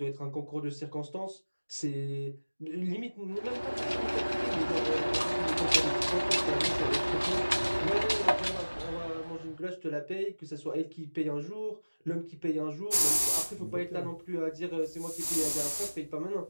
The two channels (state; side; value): inverted; both; correlation -1.00